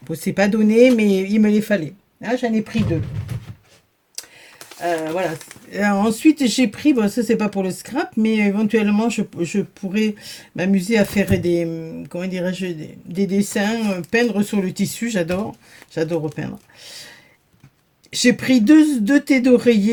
bon, c'est pas donné, mais il me les fallait. Là, j'en ai pris deux. Voilà. Ensuite, j'ai pris, bon, ça c'est pas pour le scrap, mais éventuellement, je pourrais m'amuser à faire comment dirais-je, des dessins, peindre sur le tissu, j'adore repeindre. J'ai pris deux thés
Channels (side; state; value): both; identical; correlation 1.00